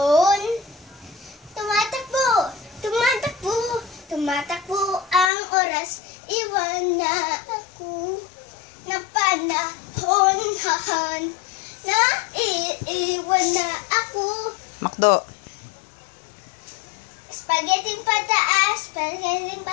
Tumatakbo, tumatakbo, tumatakbo ang oras, iwan na ako ng panahon na iiwan na ako. Makdo. Spaghetti pataas, spaghetti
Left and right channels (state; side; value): drops out; right; at 5.3 s